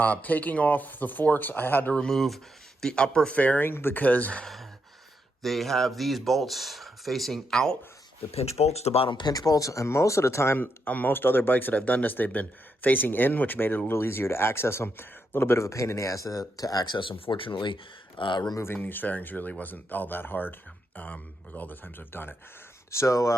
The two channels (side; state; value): both; normal; correlation 0.81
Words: Taking off the forks, I had to remove the upper fairing because they have these bolts facing out. The pinch bolts, the bottom pinch bolts, and most of the time on most other bikes that I've done this, they've been facing in, which made it a little easier to access them. A little bit of a pain in the ass to access them. Fortunately, removing these fairings really wasn't all that hard with all the times I've done it.